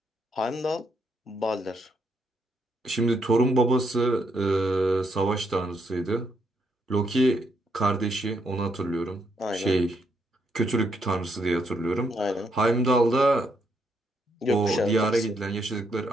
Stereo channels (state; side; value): normal; both; correlation 0.76